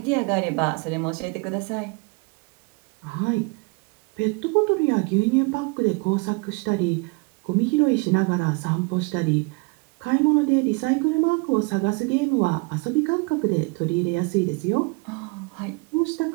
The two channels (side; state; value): left; quieter; 29.6 dB